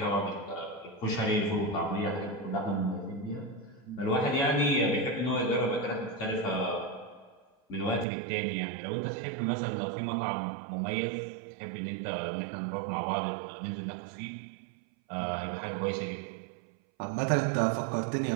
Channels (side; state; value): left; drops out; at 8.1 s